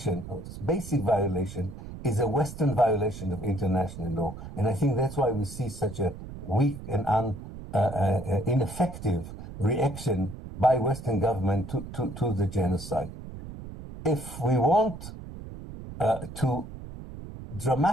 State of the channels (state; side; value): noise; right; rumble, 12 dB below the sound